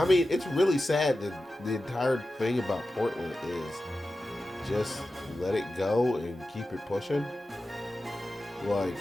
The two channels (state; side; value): normal; both; correlation 0.93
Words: mean, it's really sad that the entire thing about Portland is just let it go and keep it pushing. Like,